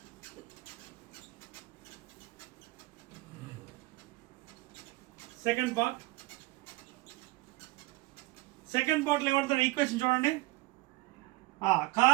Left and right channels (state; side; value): quieter; left; 20.6 dB